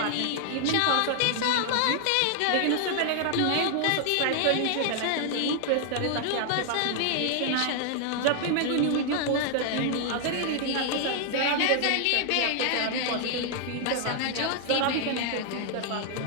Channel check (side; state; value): both; different; correlation 0.00